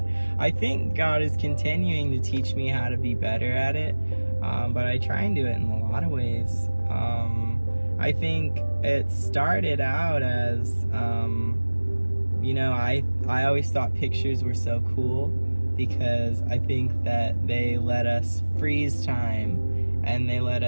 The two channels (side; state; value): both; inverted; correlation -1.00